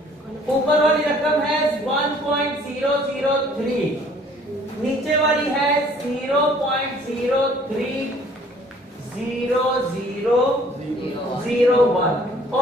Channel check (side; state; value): both; normal; correlation 0.56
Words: ऊपर वाली रकम है 1.003, नीचे वाली है 0.03001